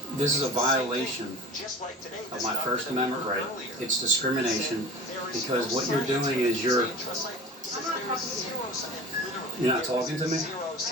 this is a violation of my First Amendment right. It's discrimination because what you're doing is you're not talking to me? In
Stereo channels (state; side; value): normal; both; correlation 0.37